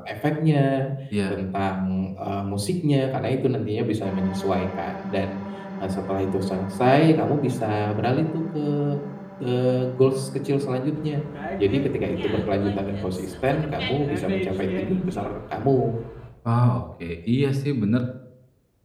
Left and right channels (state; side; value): identical; both; correlation 1.00